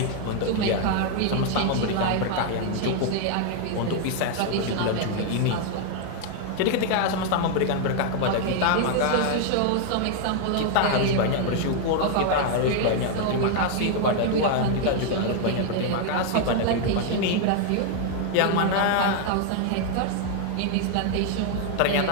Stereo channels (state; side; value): different; both; correlation 0.00